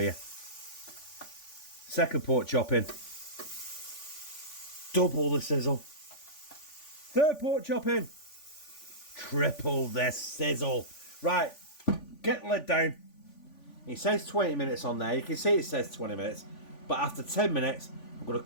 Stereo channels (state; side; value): late; right; 3.5 ms